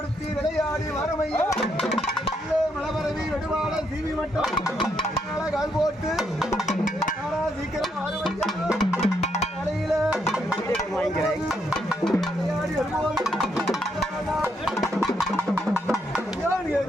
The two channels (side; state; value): both; normal; correlation 0.76